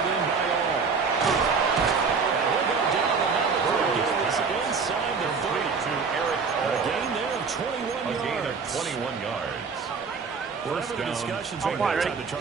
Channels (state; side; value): quieter; left; 5.2 dB